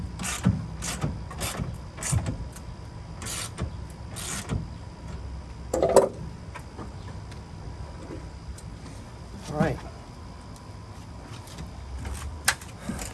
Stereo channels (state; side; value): identical; both; correlation 1.00